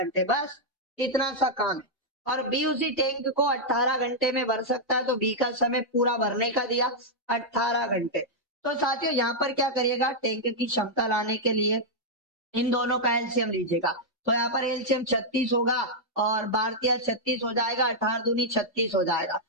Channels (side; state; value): both; normal; correlation -0.05